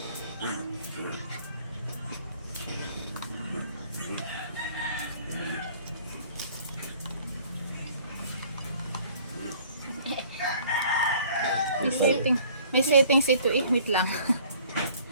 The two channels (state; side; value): inverted; both; correlation -0.54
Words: May settings ito eh. Wait lang.